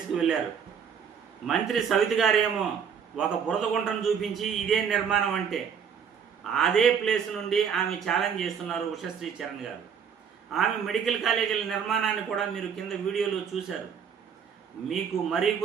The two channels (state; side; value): quieter; left; 7.2 dB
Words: వెళ్ళారు. మంత్రి సవిత గారేమో ఒక బురద గుంటను చూపించి ఇదే నిర్మాణం అంటే, అదే ప్లేస్ నుండి ఆమె ఛాలెంజ్ చేస్తున్నారు ఉషశ్రీ చరణ్ గారు. ఆమె మెడికల్ కాలేజీల నిర్మాణాన్ని కూడా మీరు కింద వీడియోలో చూశారు. మీకు మరీ